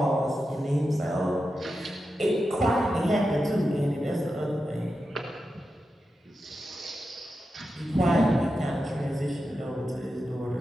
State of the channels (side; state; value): both; normal; correlation 0.90